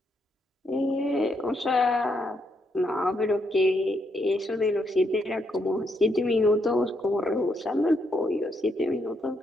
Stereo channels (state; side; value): normal; both; correlation 0.77